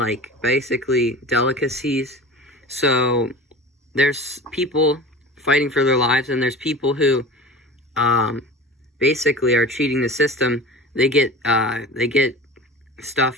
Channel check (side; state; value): both; normal; correlation 0.35